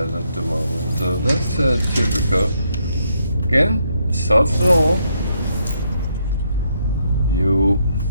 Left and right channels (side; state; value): both; inverted; correlation -0.75